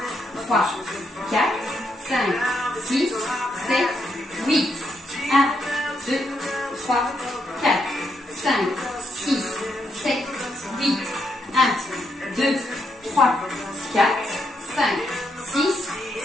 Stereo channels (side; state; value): both; normal; correlation 0.78